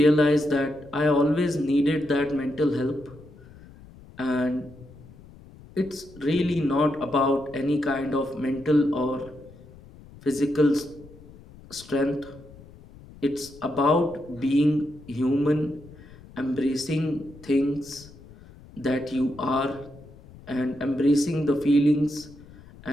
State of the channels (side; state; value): left; noise; rumble, 21 dB below the sound